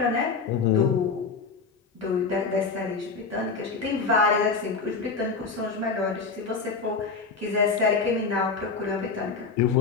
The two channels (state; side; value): quieter; right; 4.8 dB